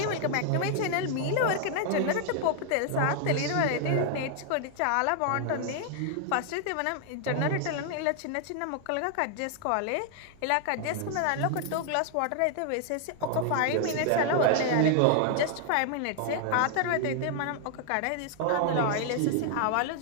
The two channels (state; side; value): different; both; correlation 0.00